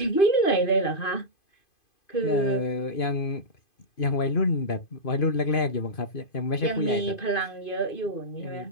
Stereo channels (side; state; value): right; late; 2.5 ms